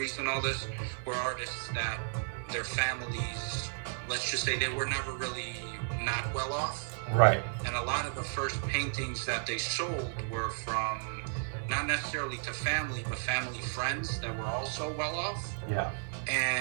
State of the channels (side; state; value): left; silent; 55 dB below the other